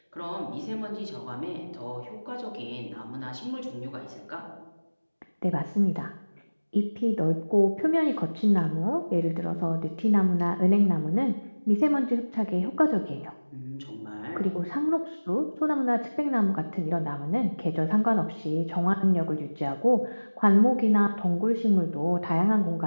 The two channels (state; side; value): inverted; both; correlation -1.00